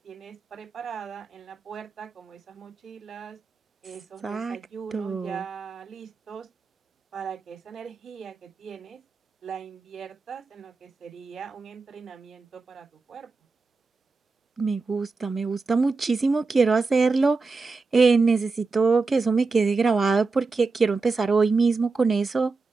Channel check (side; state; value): left; quieter; 4.2 dB